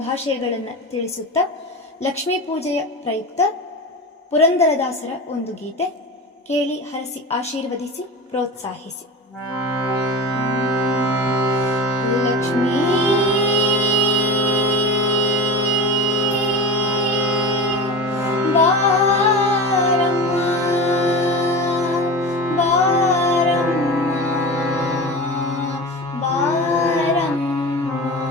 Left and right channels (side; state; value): both; normal; correlation 0.28